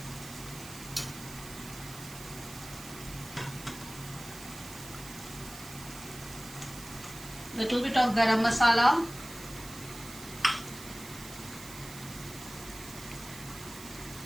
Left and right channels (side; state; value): right; noise; hiss, 13 dB below the sound